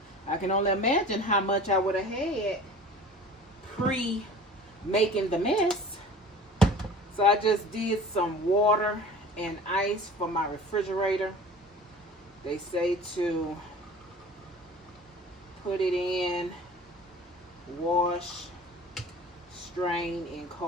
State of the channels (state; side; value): normal; both; correlation 0.42